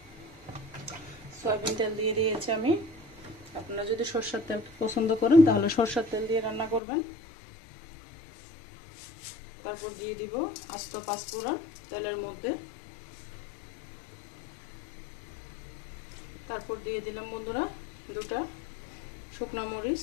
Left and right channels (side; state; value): right; drops out; at 6.8 s